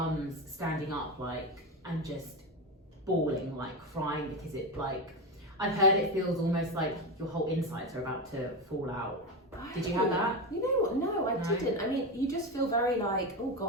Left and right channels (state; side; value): normal; both; correlation 0.16